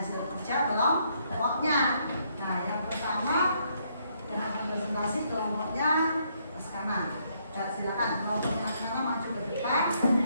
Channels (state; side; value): inverted; both; correlation -0.72